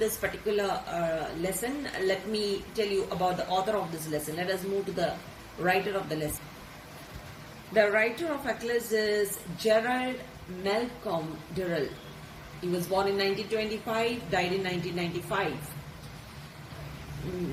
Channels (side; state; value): both; identical; correlation 1.00